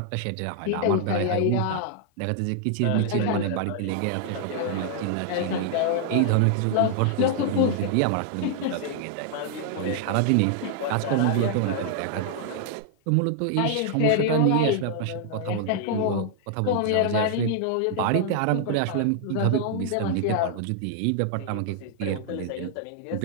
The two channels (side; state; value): both; different; correlation -0.01